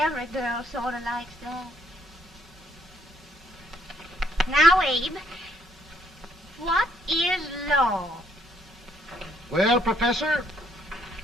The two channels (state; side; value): normal; both; correlation 0.67